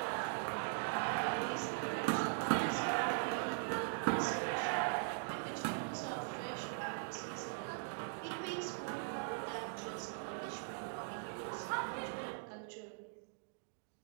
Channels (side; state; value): left; silent; digital silence